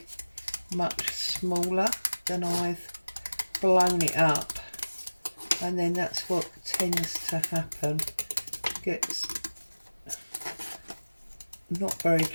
much smaller than I've blown it up, and then that's what tends to happen. It gets not very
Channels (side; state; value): both; inverted; correlation -1.00